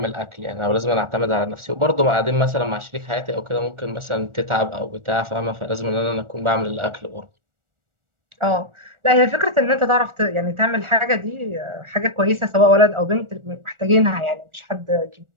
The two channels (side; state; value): left; late; 1.4 ms